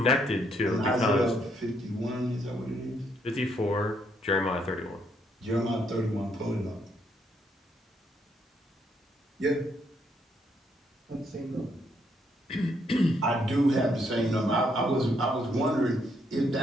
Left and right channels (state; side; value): normal; both; correlation 0.73